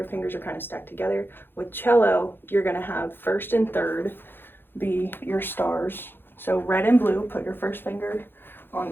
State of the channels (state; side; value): late; right; 0.10 ms